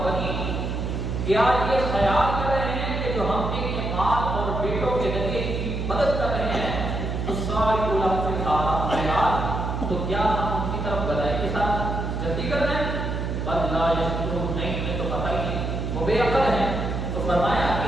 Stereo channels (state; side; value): noise; right; hum, 2 dB below the sound